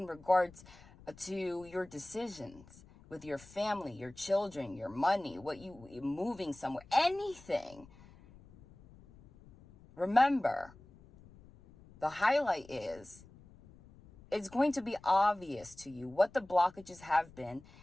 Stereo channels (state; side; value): noise; left; rumble, 23 dB below the sound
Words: regards to your decisions with your family, your children, your money, moving somewhere, anything. Remember, the highlight is, it's going to be obvious to you what the blockages have been,